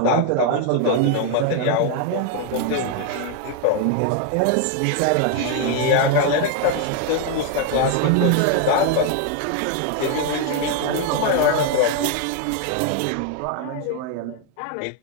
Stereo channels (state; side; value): different; both; correlation 0.00